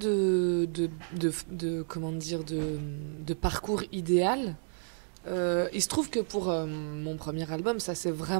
parcours idéal. Il se trouve que pour mon premier album, ça s'est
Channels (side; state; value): left; silent; 57 dB below the other